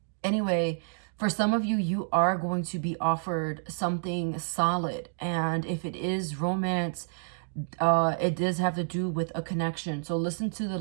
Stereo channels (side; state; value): left; silent; digital silence